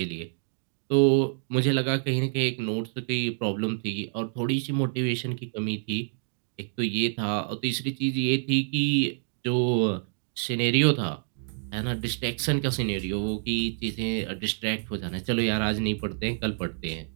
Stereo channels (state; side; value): silent; left; digital silence